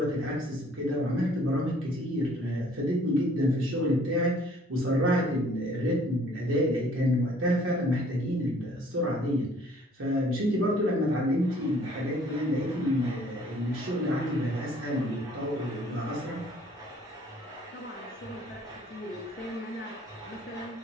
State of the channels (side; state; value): both; normal; correlation 0.58